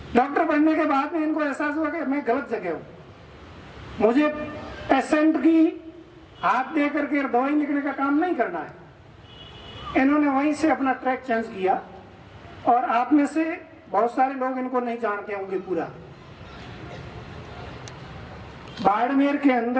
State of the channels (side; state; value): both; identical; correlation 1.00